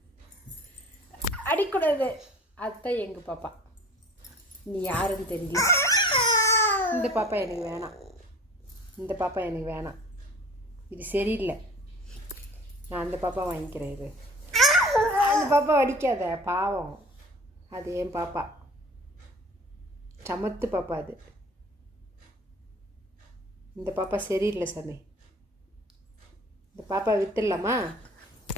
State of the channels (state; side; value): normal; both; correlation 0.45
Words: அடிக்கூடாது. அதுதான் எங்கள் பாப்பா. நீ யாருன்னு தெரியல. இந்த பாப்பா எனக்கு வேணாம். இந்த பாப்பா எனக்கு வேணாம். இது சரியில்லை. நான் அந்த பாப்பா வாங்கிக்கிறேன். இது அந்த பாப்பா அடிக்காத, பாவம். அது என் பாப்பா, சமத்து பாப்பா. அது இந்த பாப்பா சரியில்லை சாமி. இந்த பாப்பா வித்துடலாமா?